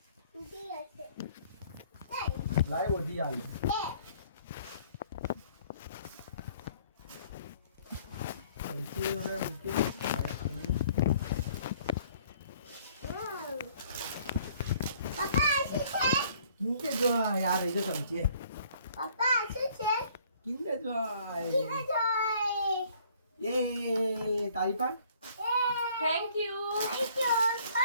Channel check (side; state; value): both; inverted; correlation -0.59